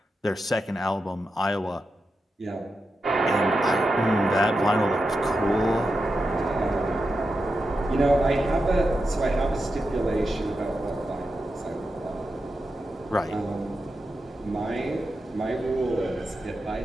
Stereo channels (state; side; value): normal; both; correlation 0.89